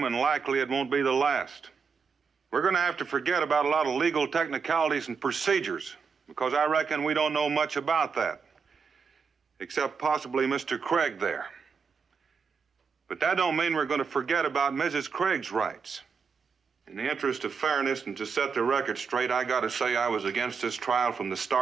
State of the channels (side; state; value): left; quieter; 5.7 dB